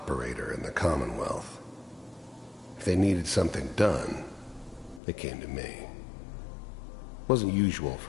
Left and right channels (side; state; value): right; drops out; at 5.0 s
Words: in the Commonwealth. If they needed something done, they came to me. It wasn't usual